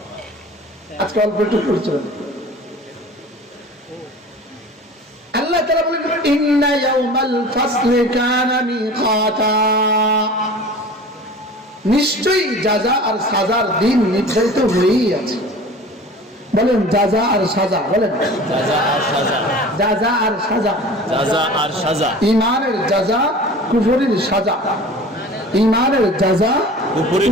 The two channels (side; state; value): both; normal; correlation 0.40